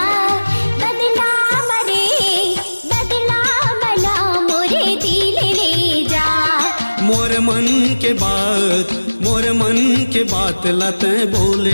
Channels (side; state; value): both; inverted; correlation -1.00